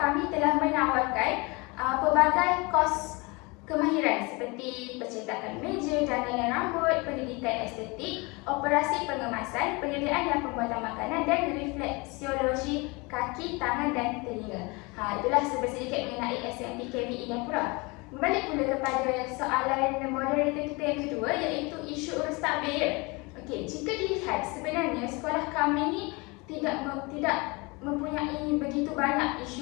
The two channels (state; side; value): quieter; right; 26.8 dB